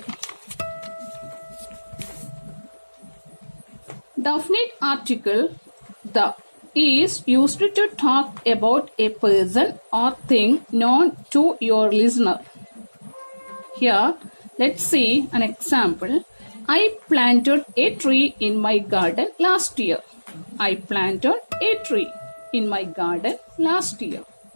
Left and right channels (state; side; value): inverted; both; correlation -1.00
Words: Definite article the is used to talk about a person or thing known to your listener. Here, let's see an example. I planted a tree in my garden last year. I planted a tree in my garden last year.